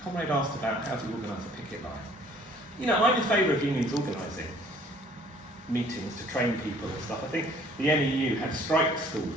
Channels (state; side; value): normal; both; correlation 0.56